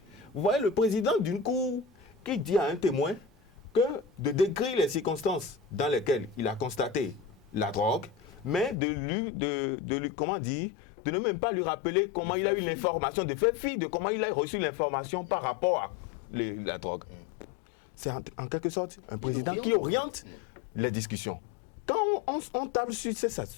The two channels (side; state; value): right; drops out; at 8.8 s